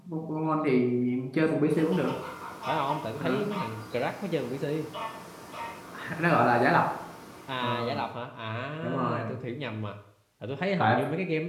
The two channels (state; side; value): identical; both; correlation 1.00